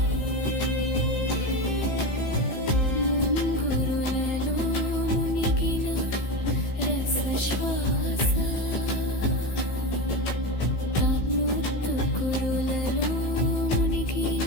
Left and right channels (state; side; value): late; right; 15 ms